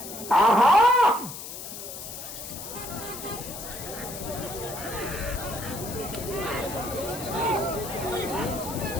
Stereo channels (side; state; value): left; noise; hiss, 10 dB below the sound